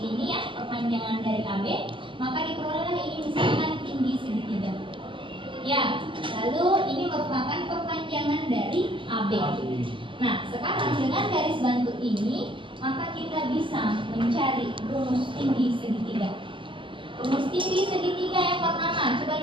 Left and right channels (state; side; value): late; left; 0.25 ms